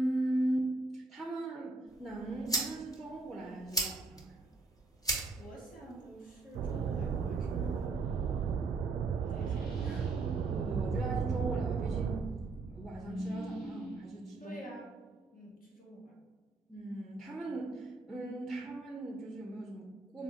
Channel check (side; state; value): left; quieter; 3.5 dB